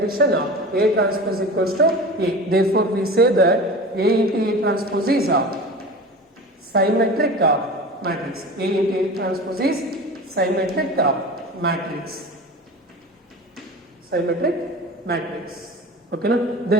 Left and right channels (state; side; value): normal; both; correlation 0.33